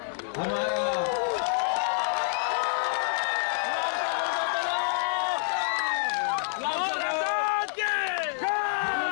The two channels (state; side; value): silent; right; 60 dB below the other